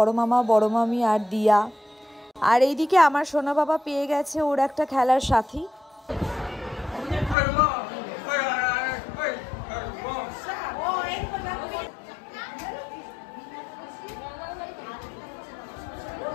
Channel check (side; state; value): right; drops out; at 7.4 s